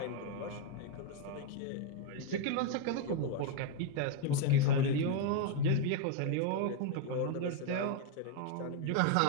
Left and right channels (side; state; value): both; different; correlation 0.00